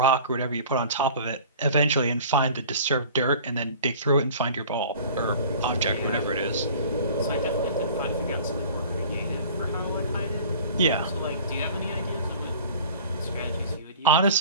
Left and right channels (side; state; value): both; inverted; correlation -0.44